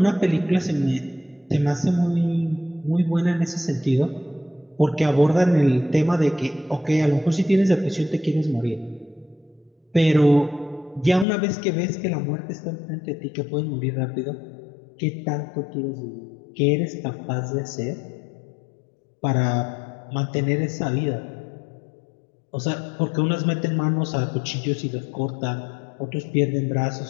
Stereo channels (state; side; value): drops out; right; at 11.2 s